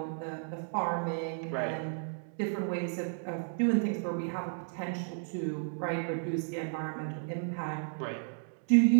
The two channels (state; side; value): silent; left; digital silence